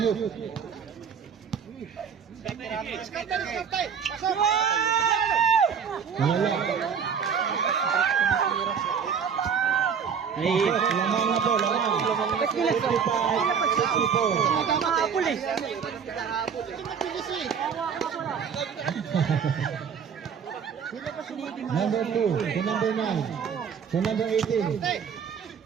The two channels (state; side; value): quieter; left; 6.9 dB